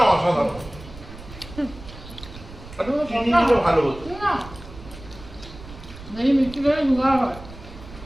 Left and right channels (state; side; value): noise; right; rumble, 16 dB below the sound